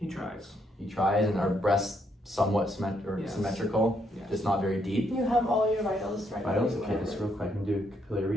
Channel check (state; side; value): normal; both; correlation 0.74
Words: tries. He tries, and our breasts somewhat Yes. symmetrical, Yes. just not very deep. You have all your vitals right. Vitals, okay, just real quick, I'm gonna do